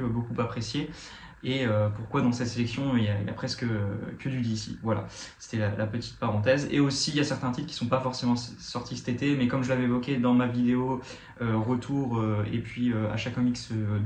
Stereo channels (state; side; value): identical; both; correlation 1.00